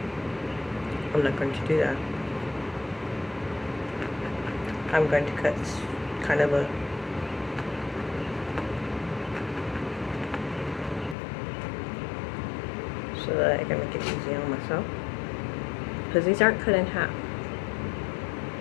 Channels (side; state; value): right; drops out; at 11.2 s